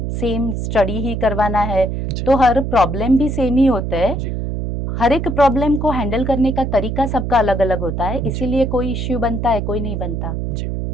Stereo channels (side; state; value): right; noise; hum, 2 dB below the sound